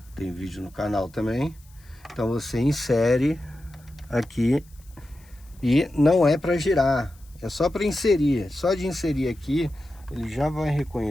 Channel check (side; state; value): left; noise; hiss, 29 dB below the sound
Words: Tem vídeo no canal também. Então você insere aqui e não é para girar. É só para inserir. Só de inserir aqui, ele já vai